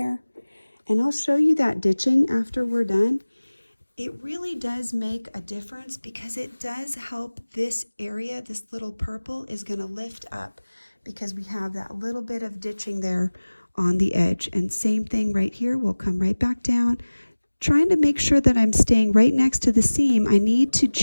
And I'll show you that ditching after we're done. It really does make a difference because it does help this area. This little purple is going to lift up because we have that little bit of ditching there on the edge. And same thing right here, we'll come right back down. Trying to make sure that I'm staying right next to the seam. I need to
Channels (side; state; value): both; inverted; correlation -1.00